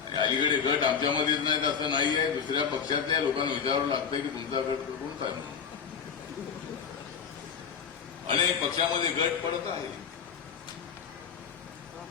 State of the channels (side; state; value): right; quieter; 6.8 dB